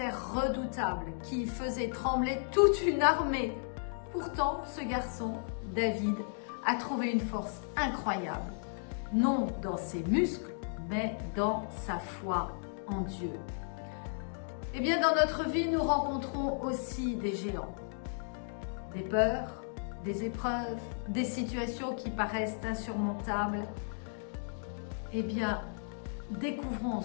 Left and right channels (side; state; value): right; silent; digital silence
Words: redoutable qui faisait trembler toute une armée. Pourtant, ce garçon, David, a trouvé une force incroyable, non dans ses muscles, mais dans sa foi en Dieu. Eh bien, dans notre vie, nous rencontrons aussi des géants, des peurs, des épreuves, des situations qui paraissent insurmontables. Eh bien, découvrons